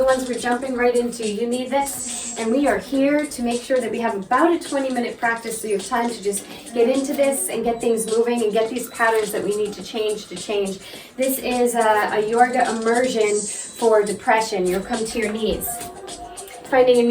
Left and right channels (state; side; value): identical; both; correlation 1.00